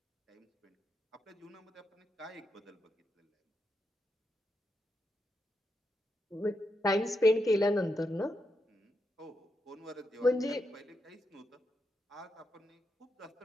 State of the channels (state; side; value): normal; both; correlation 0.84